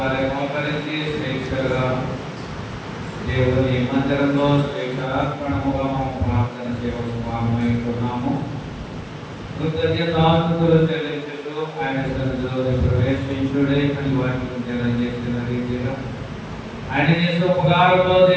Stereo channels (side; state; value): both; identical; correlation 1.00